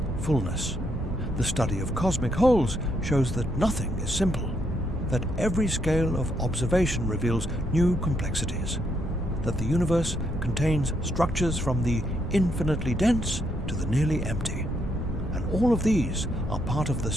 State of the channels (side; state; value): both; normal; correlation 0.75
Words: fullness. The study of cosmic holes shows that nothing is simple, that every scale of observation reveals new complexities, that the universe contains structures from the infinitely dense to the nearly empty. And all of these are part of the